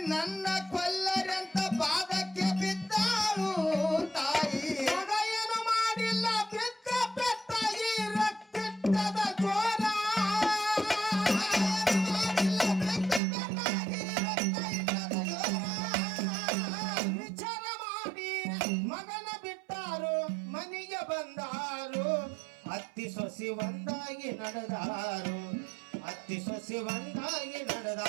ನನ್ನ ಕೊಲ್ಲರಂತ ಪಾದಕ್ಕೆ ಬಿದ್ದಾಳು ತಾಯಿ. ಮಗ ಏನು ಮಾಡಿಲ್ಲ ಬಿದ್ದ ಪೆಟ್ಟ ಈ ರಕ್ತದ ಜೋರ ಮಾಡಿಲ್ಲ ಬೆಕ್ಕ ಬೆಕ್ಕಾಗಿ ರಕ್ತ ಇಟ್ಟದ ಜೋರ. ವಿಚಾರ ಮಾಡಿ ಮಗನ ಬಿಟ್ಟಾರು ಮನೆಗೆ ಬಂದಾರು ಅತ್ತಿ ಸೊಸಿ ಒಂದಾಗಿ ನಡೆದಾರು ಅತ್ತಿ ಸೊಸಿ ಒಂದಾಗಿ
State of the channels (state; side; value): drops out; left; at 13.2 s